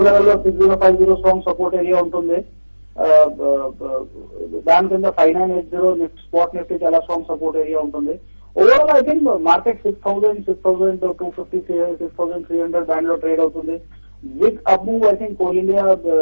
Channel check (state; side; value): inverted; both; correlation -1.00